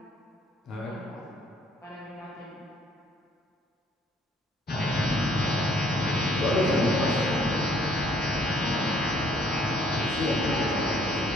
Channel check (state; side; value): normal; both; correlation 0.63